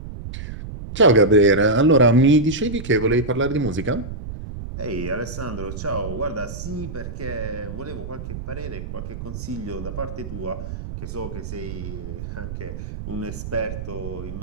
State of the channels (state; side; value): noise; right; rumble, 8 dB below the sound